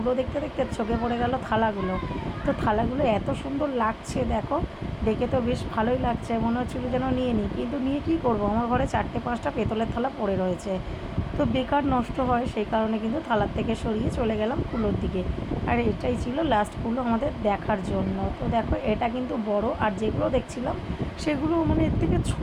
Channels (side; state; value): both; identical; correlation 1.00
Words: দেখতে দেখতে চোখে পড়ে গেল থালাগুলো। তো থালাগুলো এত সুন্দর লাগছে, দেখো দেখে তো বেশ ভালোই লাগছে, মনে হচ্ছিলো যেন নিয়ে নিই, কিন্তু নিয়ে কী করবো, আমার ঘরে 4-5টা পেতলের থালা পড়ে রয়েছে। তো বেকার নষ্ট হয়, সেই কারণে কিন্তু থালার থেকে সরিয়ে চলে গেলাম কুলোর দিকে। আর এটাই ছিল লাস্ট কুলো আমাদের দেখার জন্য। তো দেখো এটা কিন্তু বড়, আর যেগুলো দেখছিলাম সেগুলো মানে এর থেকে